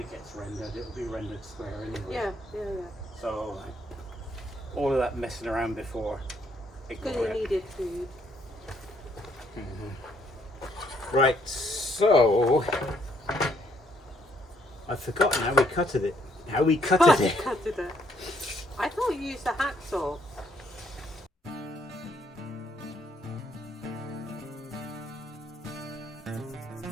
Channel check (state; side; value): normal; both; correlation 0.70